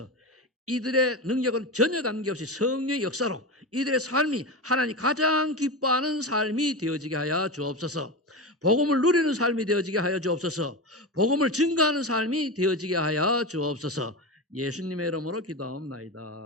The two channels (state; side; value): normal; both; correlation 0.21